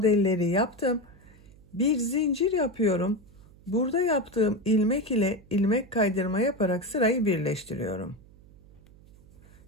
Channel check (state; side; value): noise; right; hum, 25 dB below the sound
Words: yaptım. Bir zincir yapıyorum. Burada yaptığım ilmek ile ilmek kaydırma yaparak sırayı birleştiriyorum.